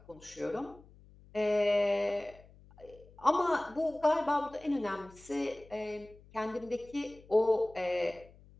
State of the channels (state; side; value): noise; left; hum, 24 dB below the sound